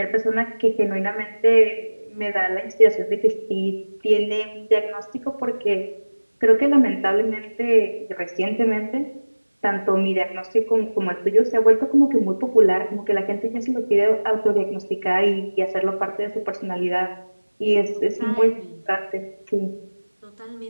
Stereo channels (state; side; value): inverted; both; correlation -1.00